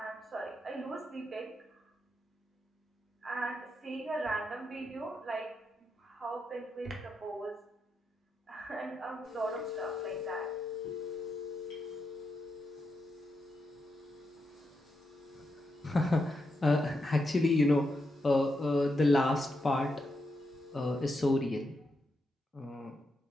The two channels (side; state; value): both; normal; correlation 0.84